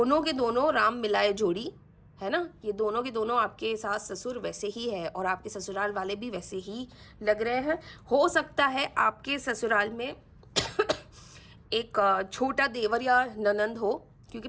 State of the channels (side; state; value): both; identical; correlation 1.00